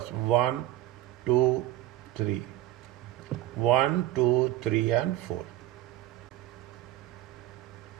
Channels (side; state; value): left; quieter; 14.8 dB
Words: 1, 2, 3. 1, 2, 3 and 4.